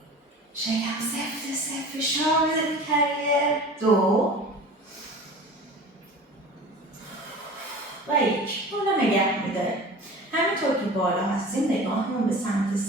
شکم سفت فشار بده به کریر. دو و یک. بالا نگه میداره. همینطور که بالا هستیم نگاهمون به سمت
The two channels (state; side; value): normal; both; correlation 0.39